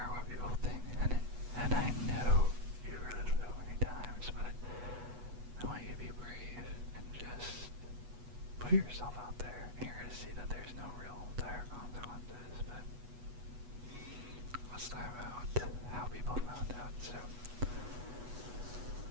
what people think, and I know you've heard it so many times, but I want you to be brave and just put yourself out there. And you're going to see that there's no real dire consequences, but let's talk about how people found out. So,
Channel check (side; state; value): left; late; 8.2 ms